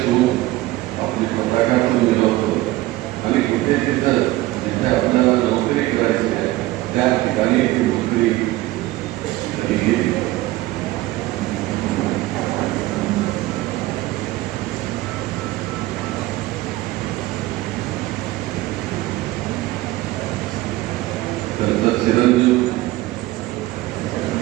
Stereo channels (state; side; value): quieter; left; 17.7 dB